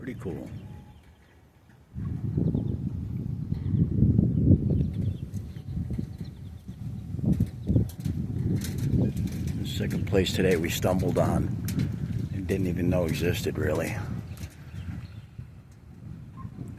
cool. The second place today we stumbled on and didn't even know existed, really.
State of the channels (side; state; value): both; identical; correlation 1.00